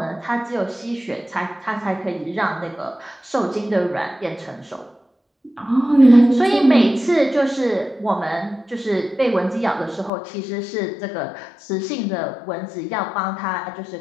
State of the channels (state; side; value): drops out; right; at 10.1 s